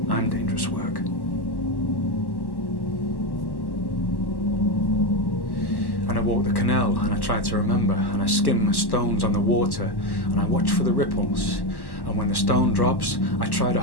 I'm dangerous work. And I walk the canal and I try to remember and I skim the stones on the water and I watch for the ripples. And when the stone drops, I try to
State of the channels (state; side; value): late; right; 1.1 ms